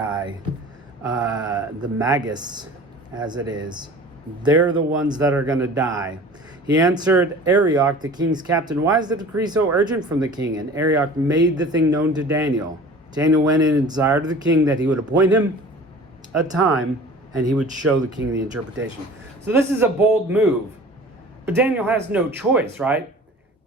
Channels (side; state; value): both; normal; correlation 0.43